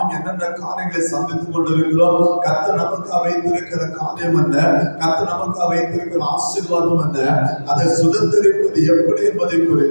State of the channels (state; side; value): inverted; both; correlation -1.00